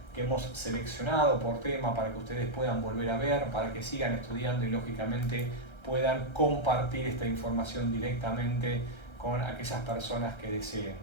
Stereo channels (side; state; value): right; late; 1.3 ms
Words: que hemos seleccionado por tema para que ustedes puedan volver a ver, para que sigan estudiando y lógicamente puedan compartir esta información directamente con aquellas personas que deseen.